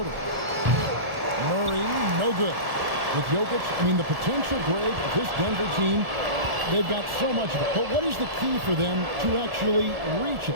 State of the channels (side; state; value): left; late; 1.4 ms